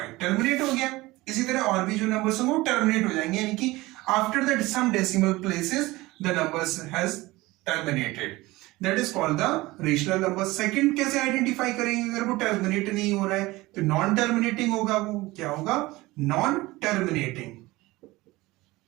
टर्मिनेट हो गया। इसी तरह और भी जो नंबर्स होंगे वो टर्मिनेट हो जाएंगे, यानी कि after that some decimal places the numbers has terminated, that is called the rational number. Second कैसे आइडेंटिफाई करेंगे अगर वो टर्मिनेट नहीं हो रहा है, तो नॉन टर्मिनेटिंग होगा, वो क्या होगा, non terminating,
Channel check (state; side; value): quieter; left; 20.0 dB